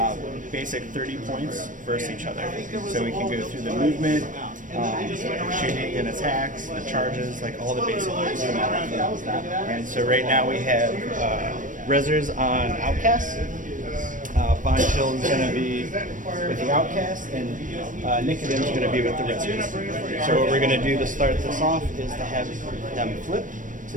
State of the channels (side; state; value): left; late; 0.38 ms